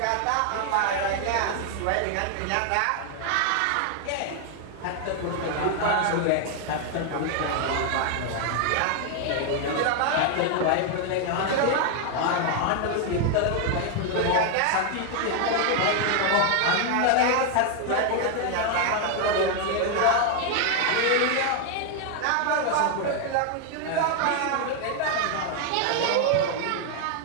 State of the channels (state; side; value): different; both; correlation 0.00